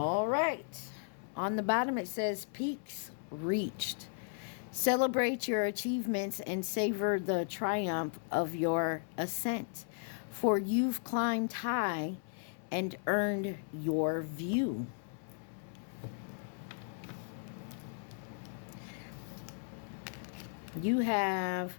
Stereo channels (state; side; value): silent; right; 54 dB below the other